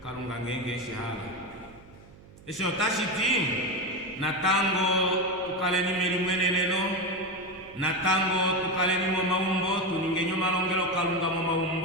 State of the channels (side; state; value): right; noise; hum, 22 dB below the sound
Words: kalunga ngenge shihala esho tashiti natango tukaleni melimweneneno natango tukaleni mo maumbo tuningenyo malongelo kalunga mo